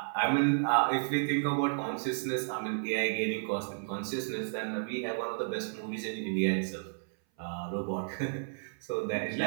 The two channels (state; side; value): silent; left; 56 dB below the other